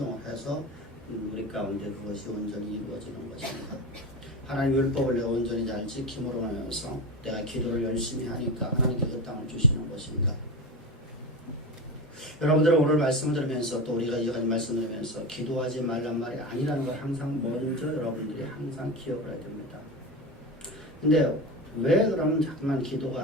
해서 우리 가운데 그것이 온전히 이루어지는 것인가? 하나님 율법을 내가 온전히 잘 지킴으로 하면서 내가 기도를 열심히 하니까 하나님께 그 땅을 주시는 것인가? 여러분들은 오늘 말씀을 들으면서 또 우리가 이어가는 말씀을 들으면서 기도하지 말란 말이 아니라는 걸 항상 먼저 여러분들이 항상 기억을 해야 됩니다. 근데 왜 그러면 자꾸만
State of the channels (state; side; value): normal; both; correlation 0.23